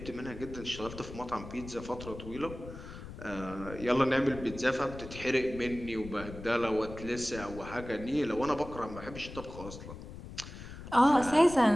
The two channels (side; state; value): left; noise; rumble, 12 dB below the sound